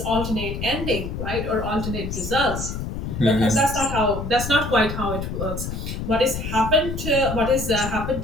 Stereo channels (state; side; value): noise; left; rumble, 5 dB below the sound